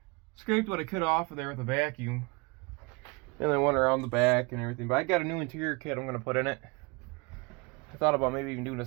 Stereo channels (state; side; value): quieter; left; 29.1 dB